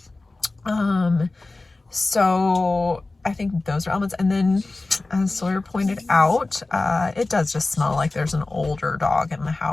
So I think those are elements. And then, as Sawyer pointed out, it does just smell like there's an older dog in the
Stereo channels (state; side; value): quieter; right; 3.2 dB